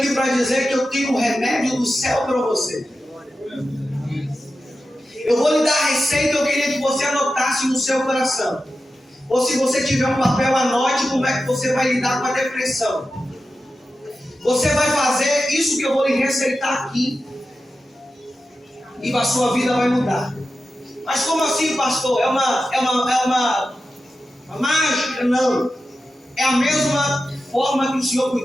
para dizer que eu tenho um remédio do céu para você. Eu vou lhe dar a receita, eu queria que você anotasse no seu coração. Ou se você tiver um papel, anote como é que você vai lidar com a depressão. Você vai fazer isso que eu vou lhe receitar aqui. E a sua vida vai mudar. Mas como assim, pastor? É uma mágica? Não. É a mesma forma que o Senhor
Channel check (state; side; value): normal; both; correlation 0.92